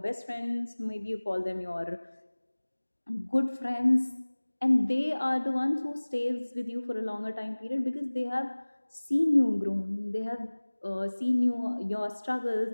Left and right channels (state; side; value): inverted; both; correlation -1.00